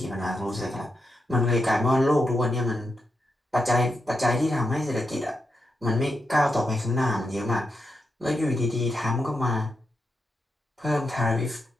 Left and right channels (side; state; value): both; normal; correlation 0.85